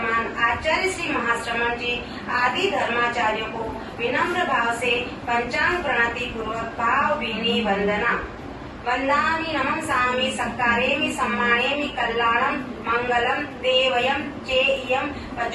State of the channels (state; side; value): identical; both; correlation 1.00